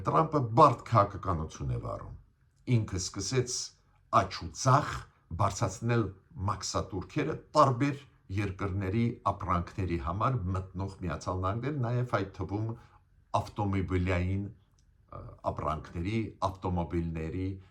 Տրամփը բարդ քաղաքականություն է վարում։ Ինքը սկսեց աճ ու ցախ բարձրացնել մաքսատուրքերը տարբեր երկրների ապրանքների համար մտնող Միացյալ Նահանգներ, նաև այդ թվում ավտոմոբիլային ապրանքների, ավտոմոբիլների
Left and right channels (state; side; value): identical; both; correlation 1.00